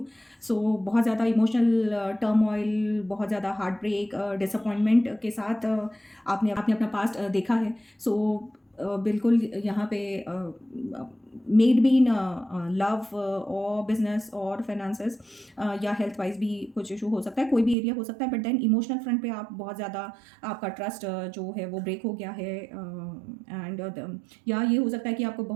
So बहुत ज़्यादा emotional turmoil, बहुत ज़्यादा heart break, disappointment के साथ आपने अपना past देखा है. सो बिल्कुल यहाँ पे मेड बी इन लव और बिजनेस और फाइनेंसेस या हेल्थ वाइज भी कुछ इशू हो सकता है, कोई भी एरिया हो सकता है. बट देन इमोशनल फ्रंट पे आप बहुत ज़्यादा आपका ट्रस्ट जो है वो ब्रेक हो गया है. एंड या ये हो सकता है कि आपको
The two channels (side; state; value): left; drops out; at 17.8 s